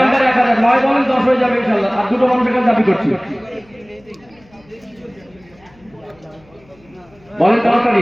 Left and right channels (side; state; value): left; noise; hum, 29 dB below the sound